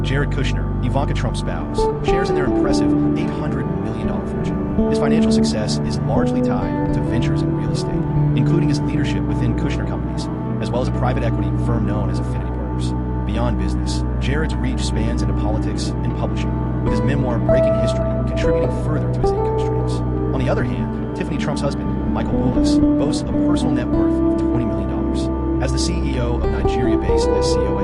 Jared Kushner, Ivanka Trump's spouse, shares in their impressive $800 million fortune. His financial success is largely tied to ventures in real estate, including his leadership within Kushner Companies, as well as a private equity firm known as Affinity Partners. Beyond business, Jared's reach spans into politics and publishing, with his memoir Breaking History contributing further to his income streams. On the other hand, Tiffany Trump's husband, Michael Boulos, boasts a personal net worth of $20 million. As the CEO of Nigeria-based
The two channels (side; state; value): both; identical; correlation 1.00